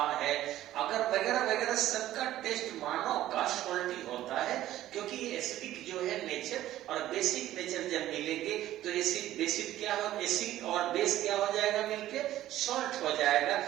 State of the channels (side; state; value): left; quieter; 13.8 dB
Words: है, अगर वगैरह वगैरह, सबका टेस्ट मानव का सॉल्टी होता है, क्योंकि ये एसिडिक जो है नेचर और बेसिक नेचर जब मिलेंगे तो एसिड बेसिक क्या हो, एसिड और बेस क्या हो जाएगा, मिलके सॉल्ट हो जाएगा।